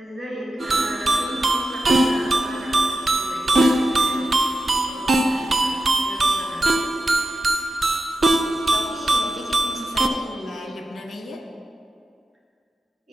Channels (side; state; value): both; normal; correlation 0.90